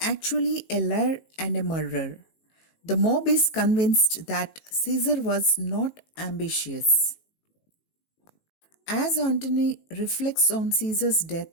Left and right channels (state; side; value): late; right; 18 ms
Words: a liar and a murderer. The mob is convinced that Caesar was not ambitious. As Antony reflects on Caesar's